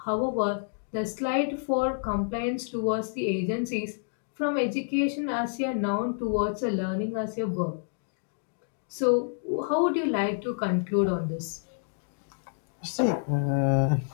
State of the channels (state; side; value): silent; right; digital silence